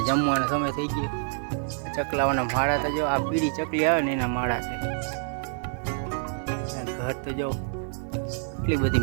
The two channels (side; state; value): left; silent; 60 dB below the other